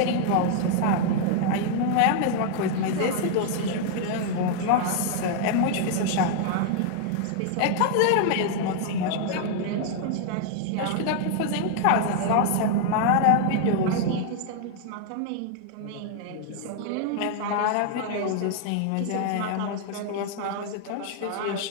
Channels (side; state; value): both; different; correlation 0.00